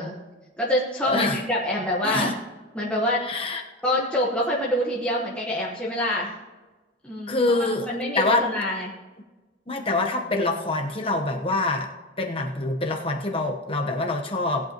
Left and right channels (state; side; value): normal; both; correlation 0.20